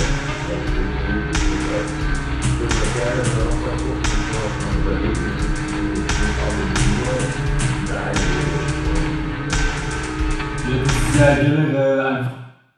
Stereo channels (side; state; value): both; identical; correlation 1.00